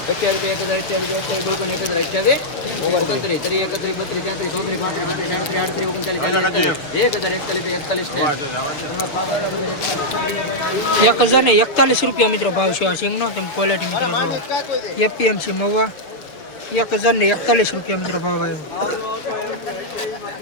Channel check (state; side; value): late; right; 6.6 ms